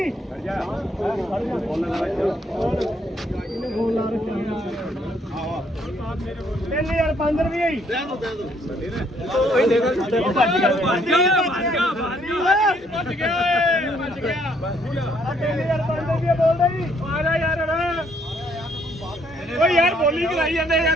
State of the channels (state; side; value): normal; both; correlation 0.68